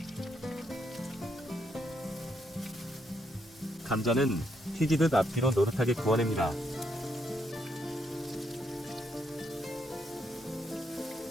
감자는 튀기듯 앞뒤로 노릇하게 구워냅니다.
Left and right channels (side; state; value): both; normal; correlation 0.76